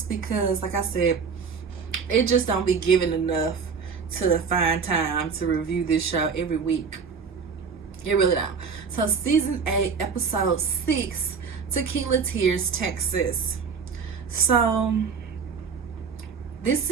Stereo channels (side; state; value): left; quieter; 5.8 dB